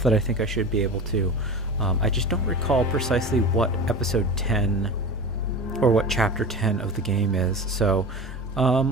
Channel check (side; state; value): both; normal; correlation 0.31